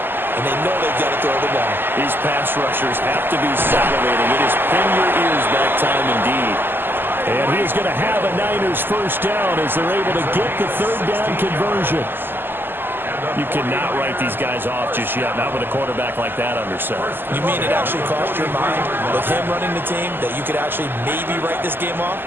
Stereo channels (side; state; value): left; late; 0.097 ms